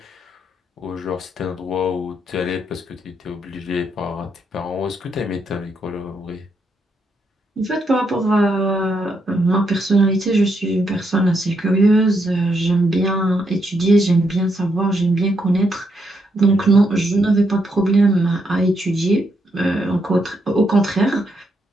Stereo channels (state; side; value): normal; both; correlation 0.78